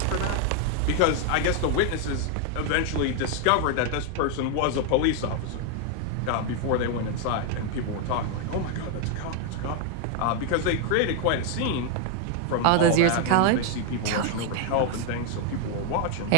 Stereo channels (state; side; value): different; both; correlation 0.00